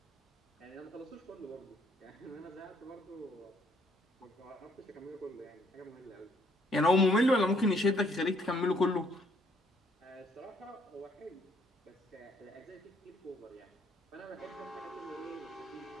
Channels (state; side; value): normal; both; correlation 0.67